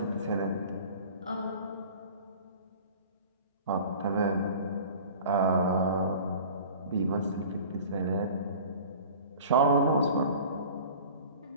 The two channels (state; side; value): inverted; both; correlation -0.42